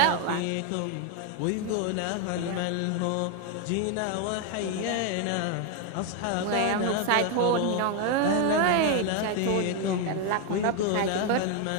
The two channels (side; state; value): both; different; correlation 0.01